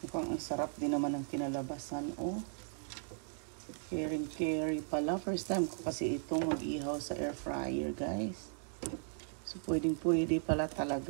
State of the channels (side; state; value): left; silent; 53 dB below the other